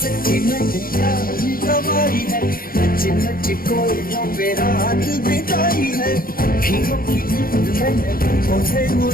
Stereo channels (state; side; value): late; right; 0.42 ms